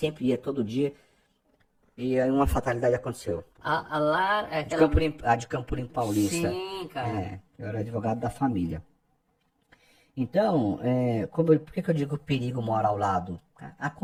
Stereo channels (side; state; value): both; identical; correlation 1.00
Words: ia, todo dia. E aí uma fatalidade aconteceu. A Lara... é De aquela... a de Campo Limpo Paulista. Sim, cara. Eu era advogado da família. Então, por que que eu digo que o perigo mora ao lado?